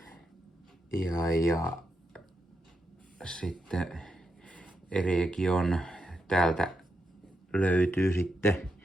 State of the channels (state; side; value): normal; both; correlation 0.84